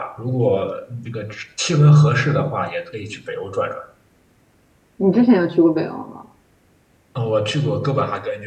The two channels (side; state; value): both; identical; correlation 1.00